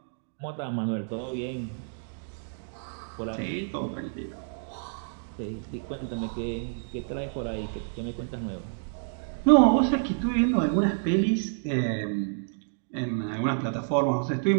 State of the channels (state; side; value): silent; left; digital silence